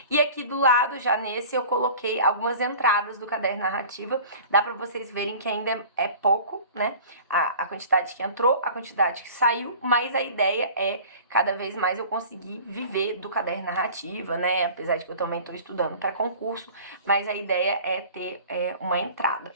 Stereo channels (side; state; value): both; inverted; correlation -0.43